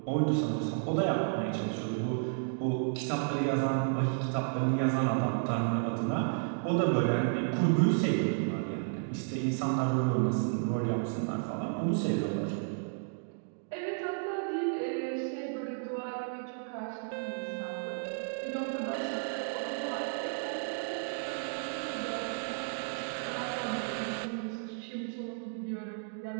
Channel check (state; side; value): silent; left; digital silence